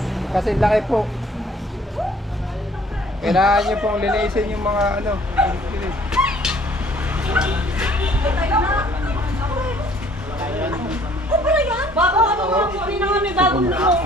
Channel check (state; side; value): normal; both; correlation 0.58